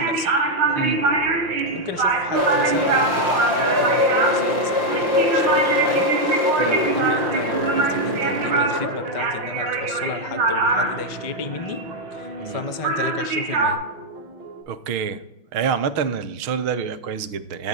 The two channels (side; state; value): left; late; 5.8 ms